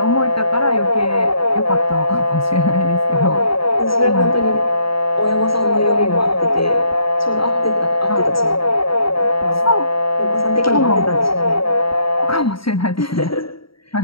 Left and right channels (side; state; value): right; late; 0.75 ms